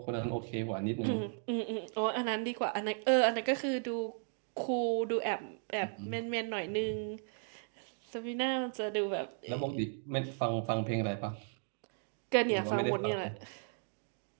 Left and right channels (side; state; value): left; silent; 54 dB below the other